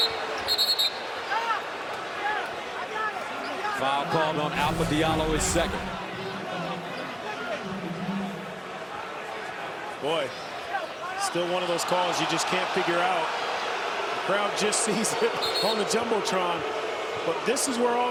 Foul called on Alpha Diallo, his 2nd. Boy, still one of those calls you just can't figure out. The crowd just sees it on the Jumbotron. But this is where all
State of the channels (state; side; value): identical; both; correlation 1.00